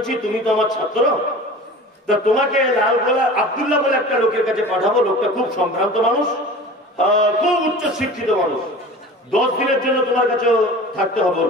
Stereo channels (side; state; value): both; normal; correlation 0.38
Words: তুমি তো আমার ছাত্র, তা তোমাকে লালগোলা আব্দুল্লাহ বলে একটা লোকের কাছে পাঠাবো। লোকটা খুব সম্ভ্রান্ত মানুষ, খুব উচ্চ শিক্ষিত মানুষ। 10 দিনের জন্য তোমার কাছে থাকতে হবে ওর